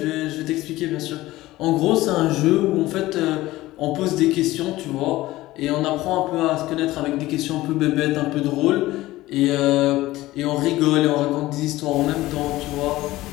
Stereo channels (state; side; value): quieter; right; 17.4 dB